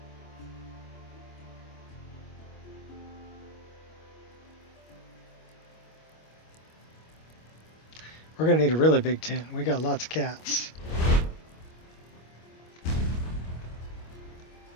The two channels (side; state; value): right; late; 25 ms